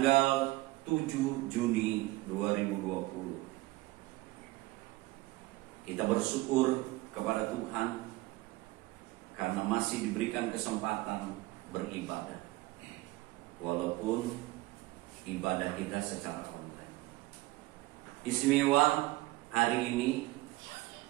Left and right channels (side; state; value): left; quieter; 20.0 dB